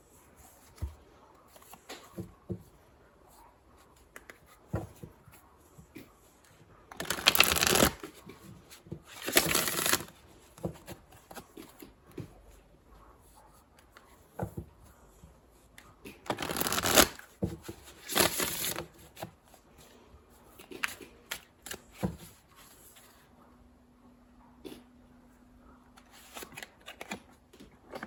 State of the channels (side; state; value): both; identical; correlation 1.00